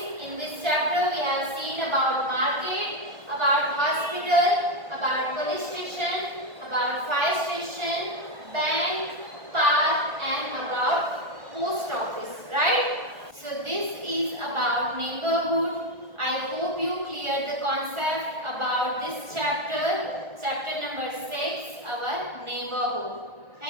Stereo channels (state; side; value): late; left; 1.4 ms